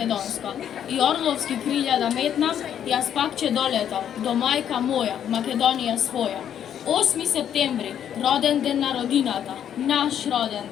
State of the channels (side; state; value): right; quieter; 9.6 dB